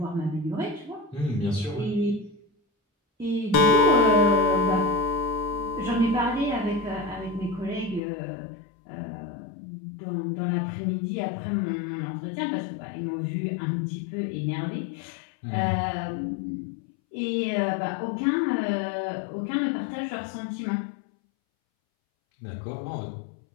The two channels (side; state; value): right; drops out; at 8.0 s